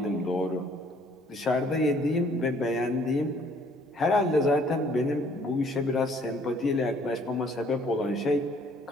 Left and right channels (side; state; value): both; normal; correlation 0.60